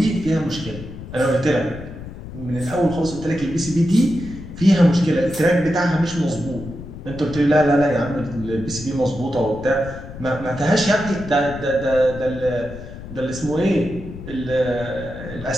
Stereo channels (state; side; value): noise; left; rumble, 12 dB below the sound